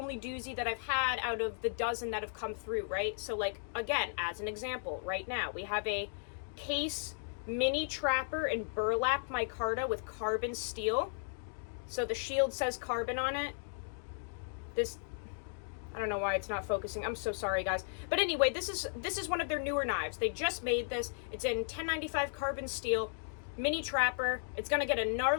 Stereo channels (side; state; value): right; silent; digital silence